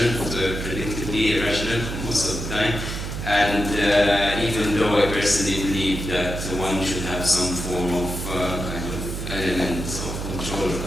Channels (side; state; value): right; noise; hum, 5 dB below the sound